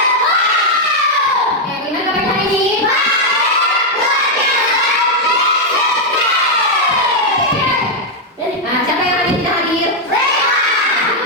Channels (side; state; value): both; normal; correlation 0.00